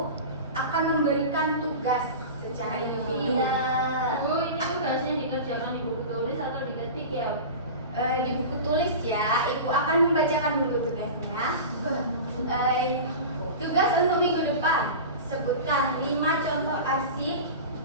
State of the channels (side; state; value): both; inverted; correlation -0.30